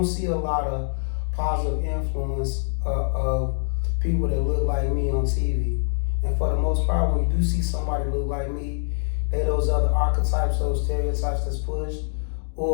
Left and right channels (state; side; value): silent; right; digital silence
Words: see a lot of positive influence of people that look like me on TV. And for the most part, when you do see somebody look like me, they those other archetypes, those stereotypes that's pushed,